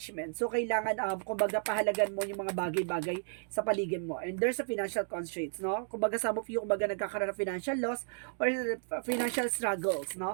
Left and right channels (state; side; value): silent; left; digital silence